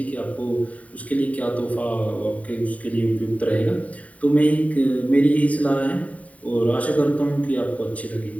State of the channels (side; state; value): right; late; 0.069 ms